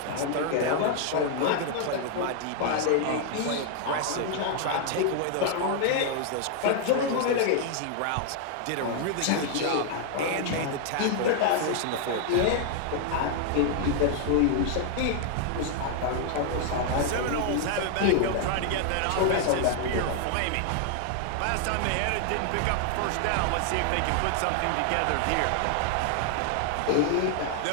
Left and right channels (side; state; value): both; different; correlation 0.00